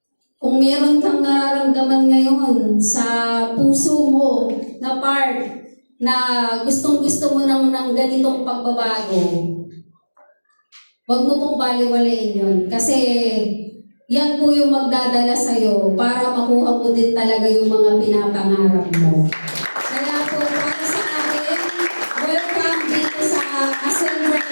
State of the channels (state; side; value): inverted; both; correlation -1.00